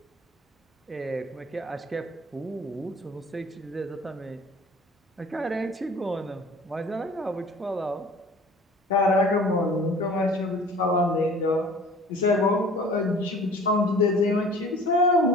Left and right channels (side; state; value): both; normal; correlation 0.46